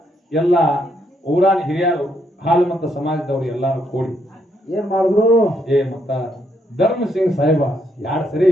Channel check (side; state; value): both; normal; correlation 0.74